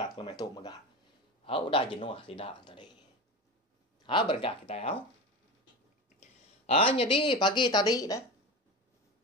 lemai tu megah. Udah jenuh tidak tadi. Berengkah kita jadi pagi tadi dah.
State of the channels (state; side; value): normal; both; correlation 0.25